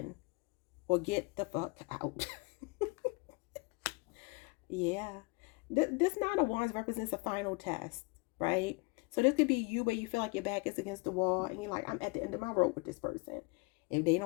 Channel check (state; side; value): quieter; right; 28.9 dB